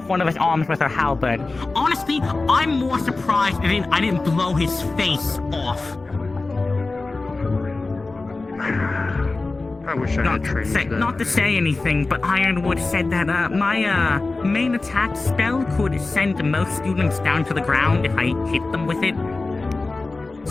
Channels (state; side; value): quieter; right; 3.5 dB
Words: one of his arms with her halberd. Honestly, I'm more surprised I didn't blow his face off. I wish I had trained that. Not to say anything, but Ironwood said that my main attack spell could send most students down to the ground if I hit them with it.